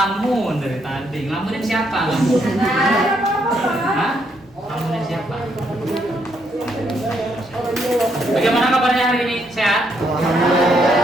dari tadi. Ngelamunin siapa? Hah? Ngelamunin siapa? Bagaimana kabarnya hari ini? Sehat?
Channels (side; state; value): both; normal; correlation 0.74